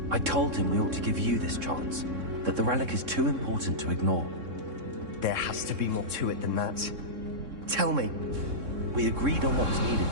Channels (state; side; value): late; left; 3.6 ms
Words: I told him we ought to give you this chance, that the relic is too important to ignore. There has to be more to it than that. Tell me. We agreed on what was